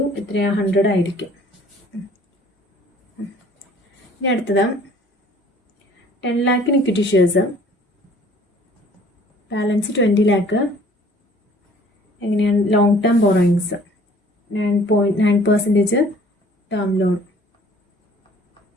എത്രയാണ് 100 ആയിരിക്കും. ഇനി അടുത്തത് 10 lakh equity shares, balance 20 lakh എങ്ങനെയാണ് long term borrowings 9% term loan.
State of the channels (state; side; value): normal; both; correlation 0.54